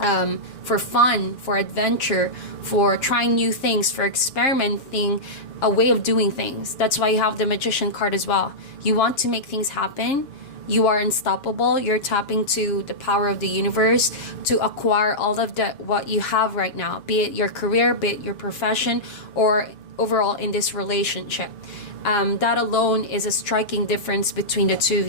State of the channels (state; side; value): late; right; 7.0 ms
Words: fun, for adventure, for trying new things, for experimenting a way of doing things. That's why you have the Magician card as well. You want to make things happen. You are unstoppable. You're tapping to the power of the universe to acquire all of what you have right now, be it your career, be it your profession, or overall in this relationship. That alone is a striking difference between the two of